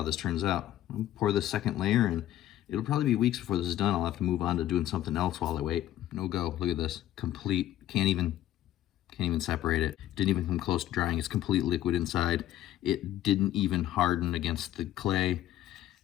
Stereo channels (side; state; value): right; quieter; 13.0 dB